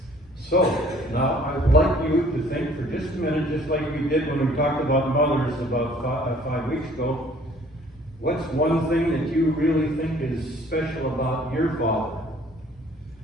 So, now I would like you to think for just a minute, just like we did when we talked about mothers about 5 weeks ago. What's one thing that you really think is special about your father?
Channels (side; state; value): both; normal; correlation 0.56